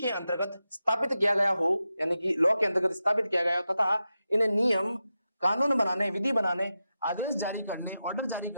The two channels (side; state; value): both; inverted; correlation -0.90